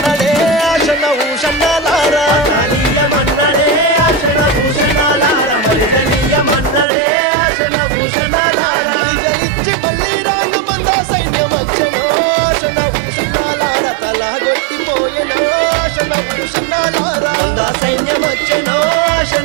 ఆశన ఊషన్నాలార మలిదలీయమన్నడే ఆశన ఊషన్నాలార మలిదలీయమన్నడే ఆశన ఊషన్నాలార మలిదలిచ్చి మళ్ళీ రాంగ మంద సైన్యమచ్చనో ఆశన ఊషన్నాలార తలగొట్టిపోయెనో ఆశన ఊషన్నాలార సైన్యమచ్చనో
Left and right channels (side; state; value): left; drops out; at 6.9 s